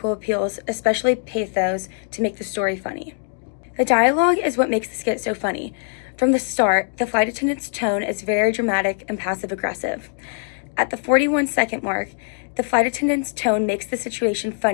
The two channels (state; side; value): silent; right; digital silence